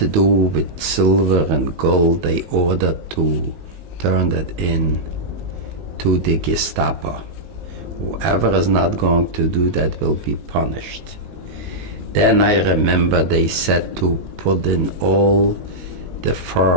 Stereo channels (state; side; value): late; left; 19 ms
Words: do with silver and gold, they ordered to turn that in to the Gestapo. Whoever is not going to do that will be punished. Then I remember they said to put in all the